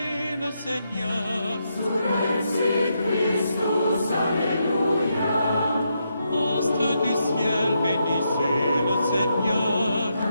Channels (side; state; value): both; inverted; correlation -0.81